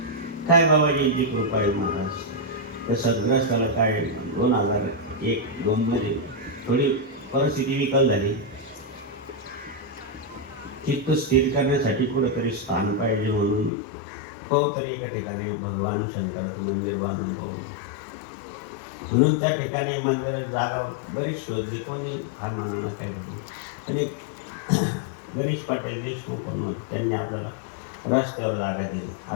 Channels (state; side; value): drops out; right; at 13.7 s